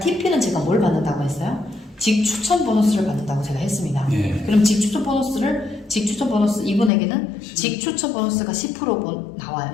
제가 뭘 받는다고 했어요? 직추천 보너스를 받는다고 제가 했습니다. 그럼 직추천 보너스 이분에게는 직추천 보너스가 10% 나와요.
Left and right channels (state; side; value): drops out; right; at 6.9 s